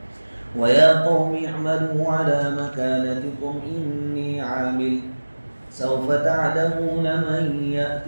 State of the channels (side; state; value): both; inverted; correlation -1.00